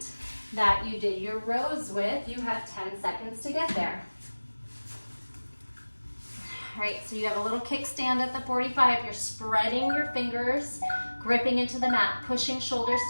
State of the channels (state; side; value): inverted; both; correlation -1.00